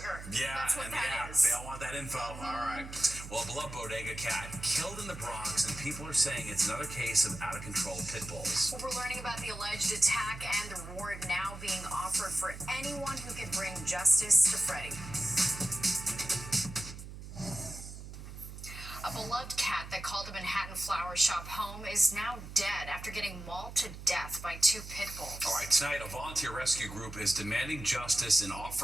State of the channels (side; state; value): right; noise; hum, 12 dB below the sound